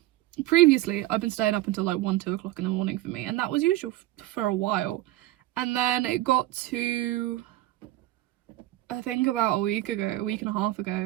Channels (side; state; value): left; quieter; 16.2 dB